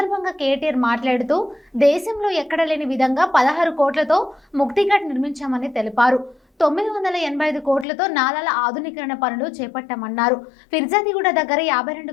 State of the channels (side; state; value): right; drops out; at 7.9 s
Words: కేటీఆర్ మాట్లాడుతూ దేశంలో ఎక్కడ లేని విధంగా 16 కోట్లతో ముక్తిఘాట్ నిర్మించామని తెలిపారు. 985 కోట్లతో నాలాల ఆధునీకరణ పనులు చేపట్టామన్నారు. ఫిర్జాదిగూడ దగ్గర